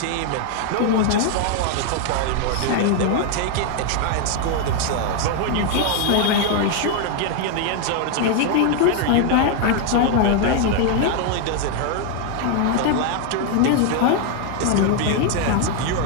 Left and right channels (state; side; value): different; both; correlation 0.00